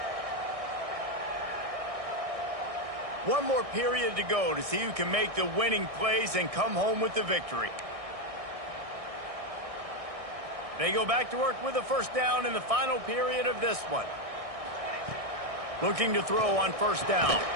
One more period to go to see who can make the winning plays and come home with the victory. They go back to work with a first down in the final period of this one. Looking to throw on first down.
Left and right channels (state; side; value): late; left; 1.6 ms